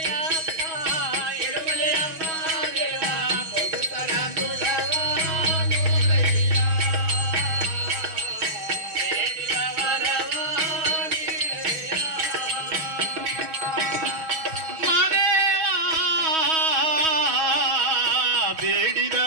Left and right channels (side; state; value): left; late; 6.3 ms